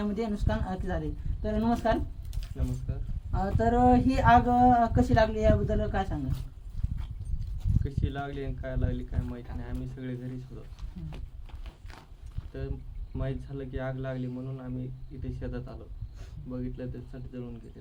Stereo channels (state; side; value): identical; both; correlation 1.00